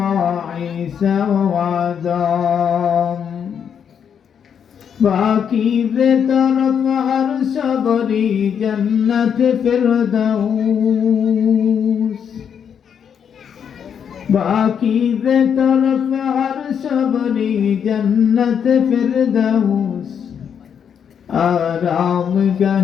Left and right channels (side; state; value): right; quieter; 7.8 dB